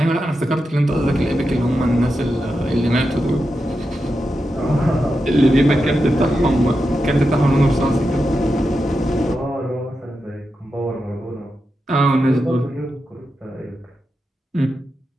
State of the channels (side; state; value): both; normal; correlation 0.88